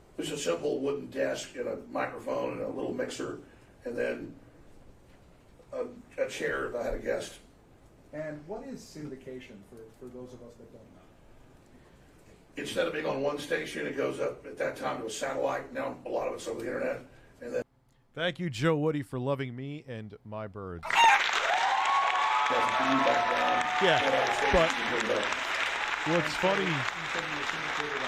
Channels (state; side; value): identical; both; correlation 1.00